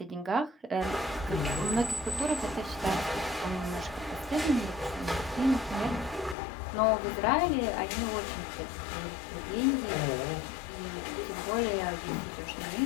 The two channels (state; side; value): drops out; right; at 6.4 s